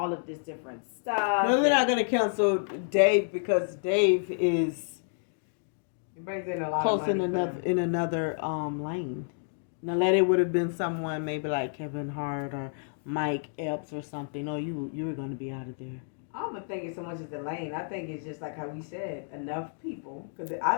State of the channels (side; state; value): right; silent; digital silence